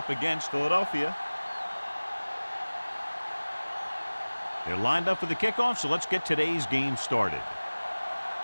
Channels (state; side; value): inverted; both; correlation -1.00